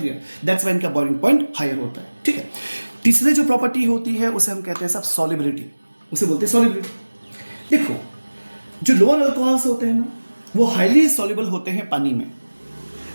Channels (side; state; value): both; inverted; correlation -1.00